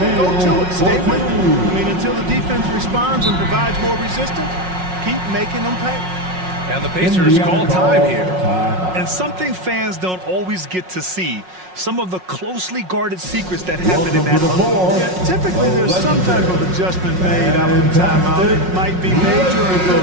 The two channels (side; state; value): left; late; 5.5 ms